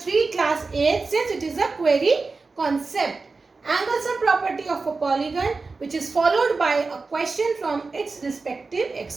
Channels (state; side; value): quieter; left; 4.1 dB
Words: class 8 since it is a query concept. Angles and property of a polygon, which is followed by a question from its respective